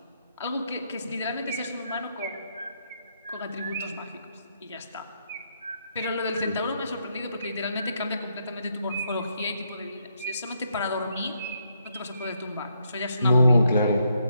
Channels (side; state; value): both; inverted; correlation -0.77